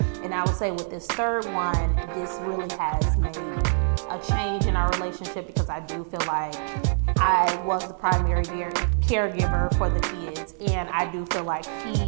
And I would say with this third one, this really has made a change in our relationship, because I do feel like I was the primary caregiver for the kids, and I do feel like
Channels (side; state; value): left; silent; 62 dB below the other